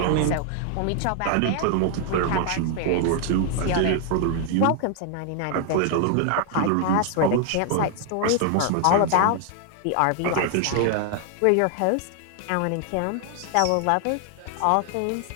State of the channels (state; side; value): different; both; correlation 0.00